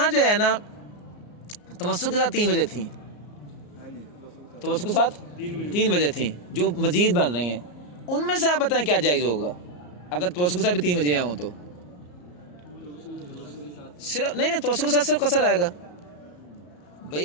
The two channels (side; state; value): right; late; 34 ms